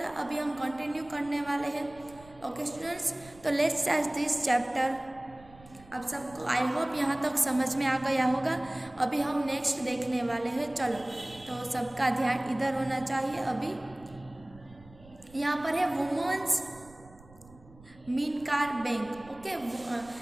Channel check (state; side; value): noise; right; rumble, 23 dB below the sound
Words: अभी हम कंटिन्यू करने वाले हैं। ओके स्टूडेंट्स, तो लेट्स स्टार्ट दिस चैप्टर। अब सबको आई होप यहाँ तक समझ में आ गया होगा। अभी हम नेक्स्ट देखने वाले हैं। चलो, तो सबका ध्यान इधर होना चाहिए। अभी यहाँ पर है वुमेन्स मीनकार बैंक। ओके,